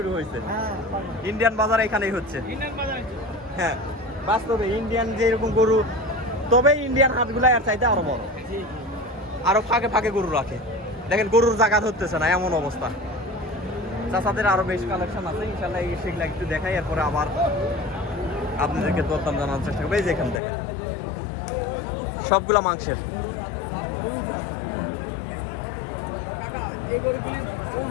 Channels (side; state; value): right; drops out; at 20.4 s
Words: হয়েছে। হ্যাঁ, ইন্ডিয়ান বাজার এখানেই হচ্ছে। হ্যাঁ, বাস্তবে ইন্ডিয়ান যেরকম গরু, তবে ইন্ডিয়ান হাটগুলা এর চাইতে আরো বড়, জি জি। আরো ফাঁকে ফাঁকে গরু রাখে। দেখেন, গরুর জায়গা ধরতেছে না, এমন অবস্থা। চাচাদের আরো বেশ কালেকশন আছে, ইনশাল্লাহ সেগুলা একটু দেখাই, এরপরে আবার আপনাদেরকে দরদাম জানানোর চেষ্টা করবো। এই যে এখানে দেখেন, সবগুলা মাংসের। এই গরুগুলির